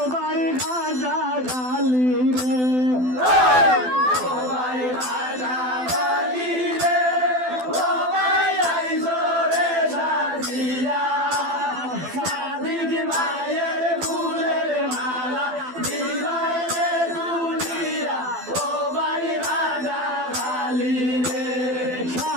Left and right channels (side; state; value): left; late; 12 ms